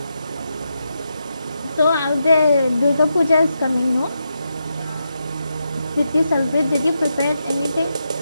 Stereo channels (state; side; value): inverted; both; correlation -0.85